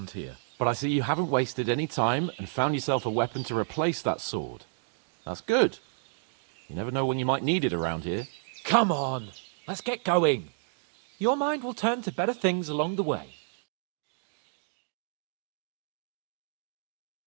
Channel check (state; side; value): silent; left; digital silence